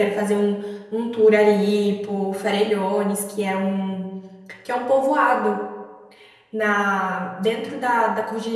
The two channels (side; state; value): both; identical; correlation 1.00